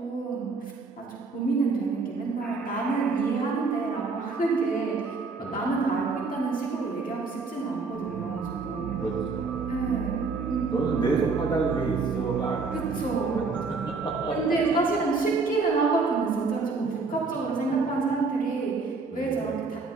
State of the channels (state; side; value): quieter; left; 4.2 dB